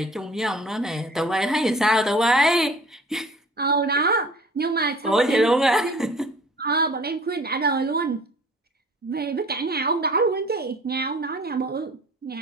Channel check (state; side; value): normal; both; correlation 0.47